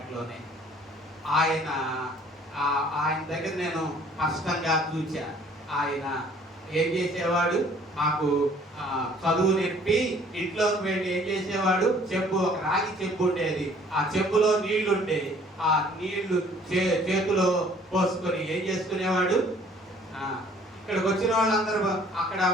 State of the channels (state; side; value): normal; both; correlation 0.56